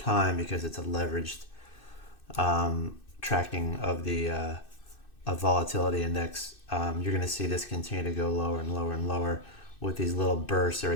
because it's a leveraged tracking of the of volatility index, you're going to see this continue to go lower and lower and lower with these little bursts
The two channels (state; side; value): late; right; 2.6 ms